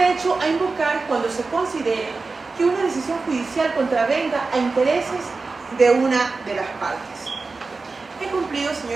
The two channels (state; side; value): quieter; left; 4.0 dB